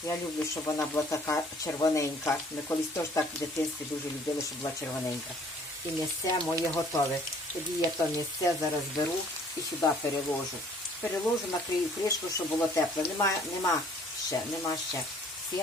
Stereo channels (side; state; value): both; normal; correlation 0.57